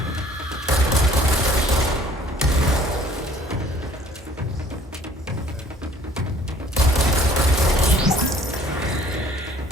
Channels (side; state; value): both; normal; correlation 0.54